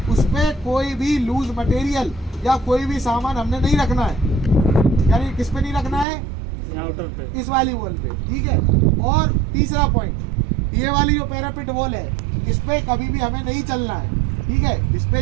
उस पर कोई भी लूज मटेरियल या कोई भी सामान हमने नहीं रखना है। यानी किस पे नहीं रखना है? आउटर पे, इस वाली वॉल पे। ठीक है, और तीसरा पॉइंट, ये वाली जो पैरापिट वॉल है इस पे कभी भी हमें नहीं चलना है। ठीक है, इस पे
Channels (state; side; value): drops out; left; at 6.1 s